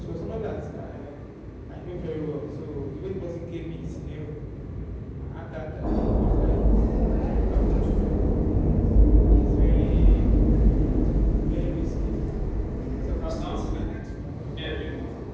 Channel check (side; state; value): both; identical; correlation 1.00